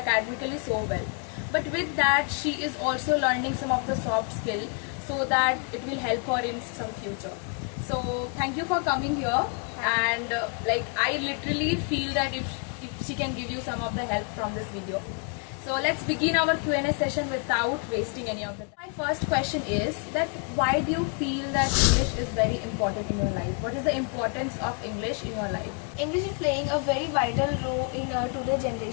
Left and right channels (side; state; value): right; quieter; 39.8 dB